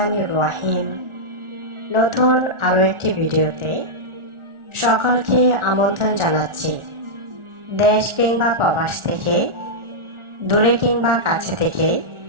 রহিম। নতুন আরও একটি ভিডিওতে সকলকে আমন্ত্রণ জানাচ্ছি। দেশ কিংবা প্রবাস থেকে, দূরে কিংবা কাছে থেকে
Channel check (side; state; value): left; late; 1.4 ms